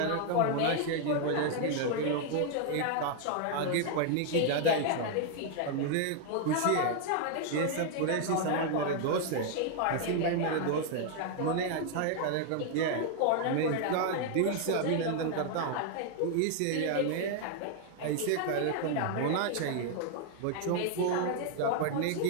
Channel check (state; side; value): different; both; correlation 0.00